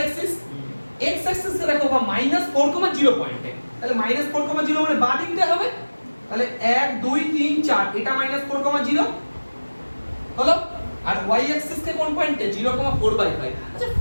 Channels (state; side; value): inverted; both; correlation -1.00